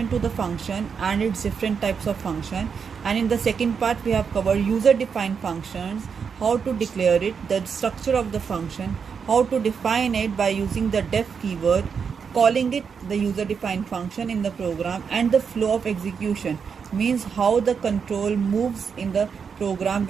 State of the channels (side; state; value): left; quieter; 6.3 dB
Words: to the function and its different types of function, and in the second part we have covered user defined functions, how to declare it, the structure of the function, how to define it by using the def keyword, calling it the user defined function in the program, and the flow of execution, means how the control moves in the program